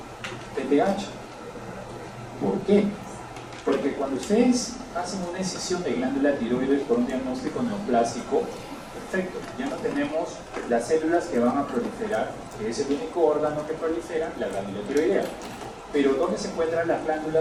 PTH. ¿Por qué? Porque cuando ustedes hacen una excisión de glándula tiroides por un diagnóstico neoplásico, perfecto, ya no tenemos las células que van a proliferar, que es el único órgano que prolifera, la glándula tiroidea. Pero ¿dónde se encuentran las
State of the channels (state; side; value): identical; both; correlation 1.00